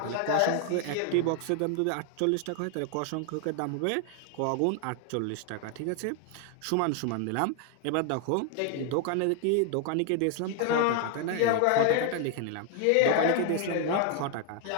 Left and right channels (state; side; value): different; both; correlation 0.00